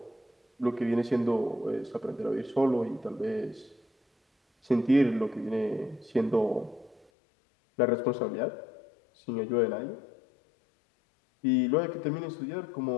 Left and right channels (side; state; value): right; drops out; at 7.1 s